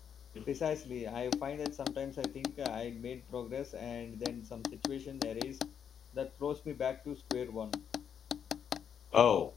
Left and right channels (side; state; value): right; quieter; 8.0 dB